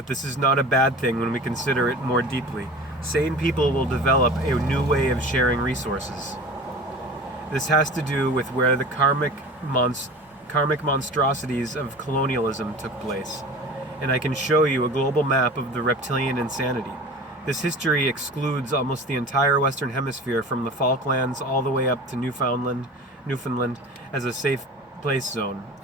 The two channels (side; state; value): both; normal; correlation 0.37